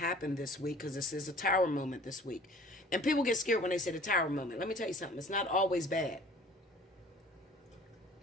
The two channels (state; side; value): normal; both; correlation 0.49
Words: this week, because this is a tower moment this week, and people get scared when they say the tower moment. Let me tell you something. It's not always bad.